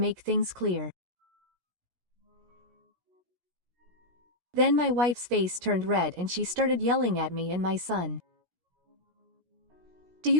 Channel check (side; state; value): left; late; 17 ms